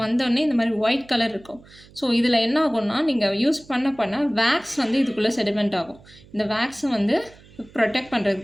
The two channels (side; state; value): right; noise; hum, 24 dB below the sound